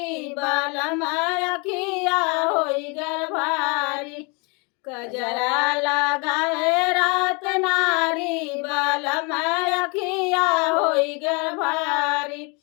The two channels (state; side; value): quieter; right; 31.5 dB